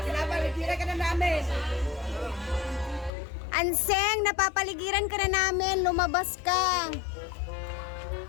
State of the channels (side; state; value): right; drops out; at 3.1 s